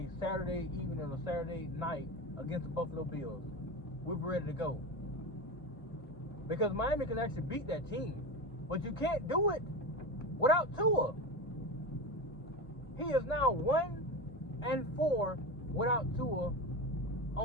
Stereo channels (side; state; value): both; normal; correlation 0.23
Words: Saturday evening or Saturday night against the Buffalo Bills. We'll be ready to go. Because Miami can actually beat that team. But you can't do it without Tua. He is now 1-4 without Tua